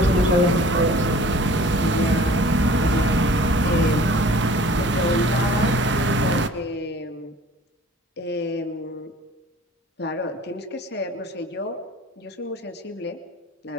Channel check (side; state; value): both; normal; correlation 0.49